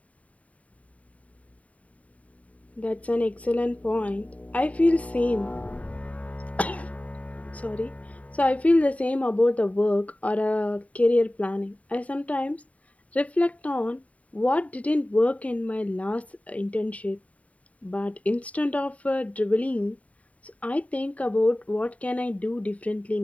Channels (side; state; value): right; late; 0.068 ms